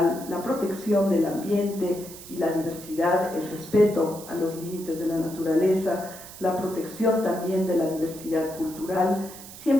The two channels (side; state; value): right; noise; hiss, 15 dB below the sound